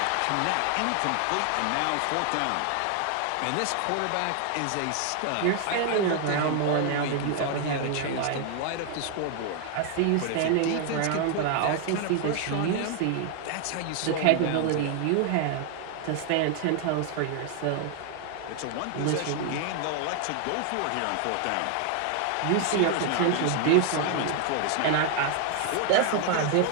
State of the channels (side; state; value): both; different; correlation 0.00